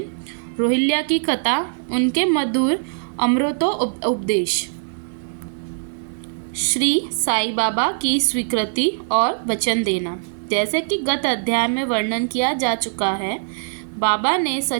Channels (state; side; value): silent; left; digital silence